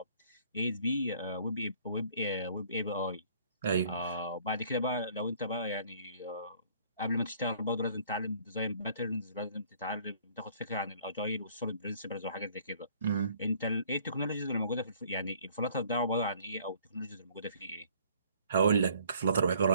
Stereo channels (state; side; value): inverted; both; correlation -0.58